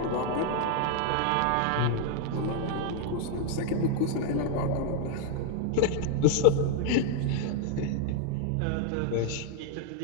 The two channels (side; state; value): both; different; correlation 0.00